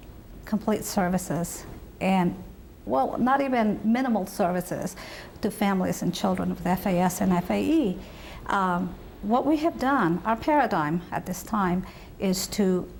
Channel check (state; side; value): identical; both; correlation 1.00